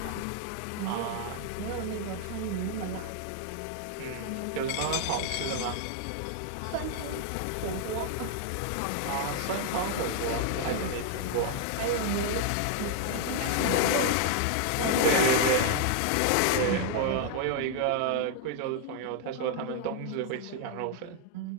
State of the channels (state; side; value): different; both; correlation 0.00